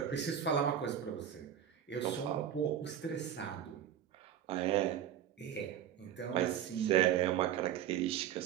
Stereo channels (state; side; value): quieter; left; 9.9 dB